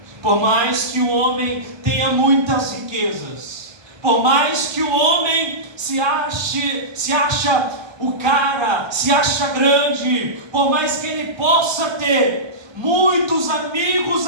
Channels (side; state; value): left; late; 1.3 ms